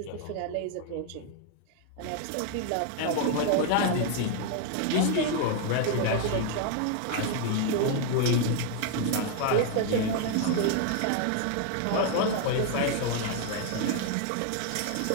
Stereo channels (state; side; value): different; both; correlation 0.00